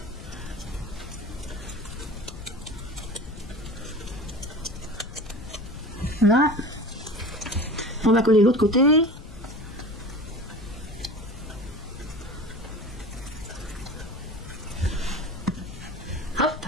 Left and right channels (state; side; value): noise; left; rumble, 13 dB below the sound